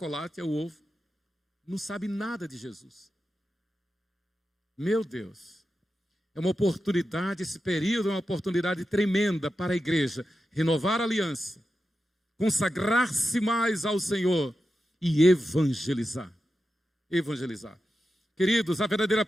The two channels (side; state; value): both; normal; correlation 0.90